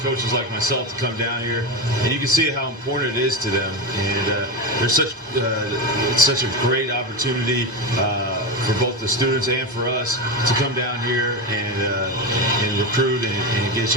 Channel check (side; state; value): both; normal; correlation 0.16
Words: like myself to come down here, and you can see how important it is to them. And it's such a great opportunity for both the students and for us to come down here and recruit and get a